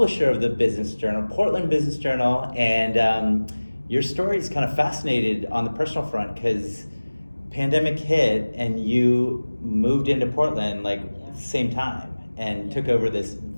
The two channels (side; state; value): both; inverted; correlation -1.00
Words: of the Business Journal, Portland Business Journal, and your story is kind of fascinated on the personal front because pandemic hit and you moved into Portland like same time and took over this